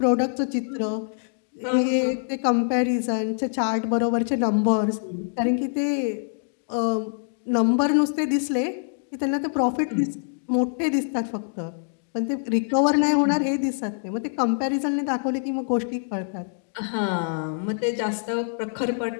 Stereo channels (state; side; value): silent; right; digital silence